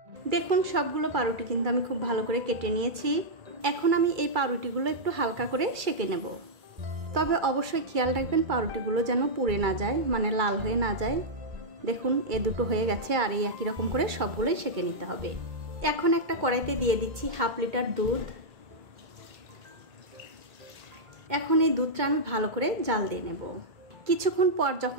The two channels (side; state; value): left; late; 2.3 ms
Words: দেখুন সবগুলো পাউরুটি কিন্তু আমি খুব ভালো করে কেটে নিয়েছি। এখন আমি এই পাউরুটিগুলো একটু হালকা করে সেঁকে নেব। তবে অবশ্যই খেয়াল রাখবেন পাউরুটিগুলো যেন পুড়ে না যায়, মানে লাল হয়ে না যায়। দেখুন এ দুটো হয়ে গেছে, আর এই একই রকম করে সবগুলোই সেঁকে নিতে হবে। এখন একটা কড়াইতে দিয়ে দিচ্ছি 1/2 লিটার দুধ। এখন এই দুধটা আমি ভালো করে জাল দিয়ে নেব। কিছুক্ষণ পর